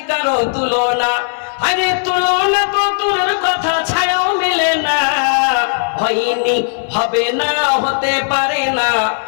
কারো তুলনা। আরে তুলনা তো দূরের কথা, ছায়াও মিলে না। হয়নি হবে না, হতে পারে না,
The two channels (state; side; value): silent; right; 68 dB below the other